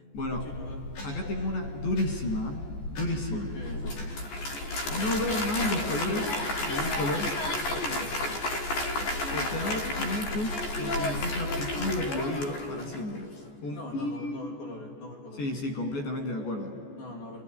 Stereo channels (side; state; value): right; late; 14 ms